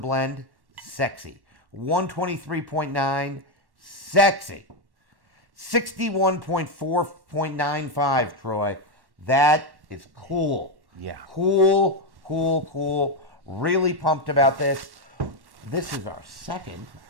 sexy. 123.9, sexy. 61.4.95, Troy. That is cool. Yeah. Cool. Really pumped about this. This is our second.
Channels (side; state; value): left; late; 1.1 ms